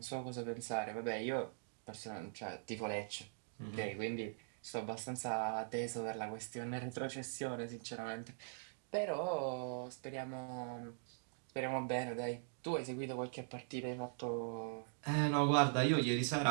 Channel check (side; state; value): left; silent; digital silence